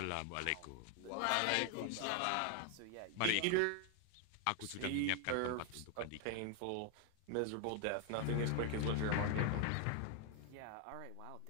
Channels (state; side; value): different; both; correlation 0.00